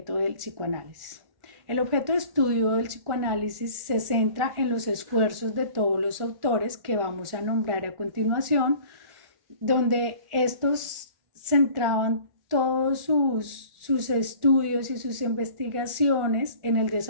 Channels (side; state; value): left; late; 1.4 ms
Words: del psicoanálisis. El objeto de estudio del psicoanálisis se centra en los esfuerzos de todos los autores que vamos a nombrar a continuación, donde estos centraban todos sus estudios y sus investigaciones en el